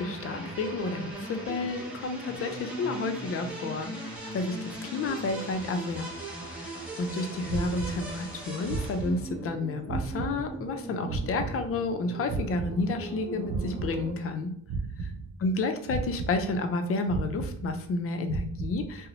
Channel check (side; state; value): both; normal; correlation 0.34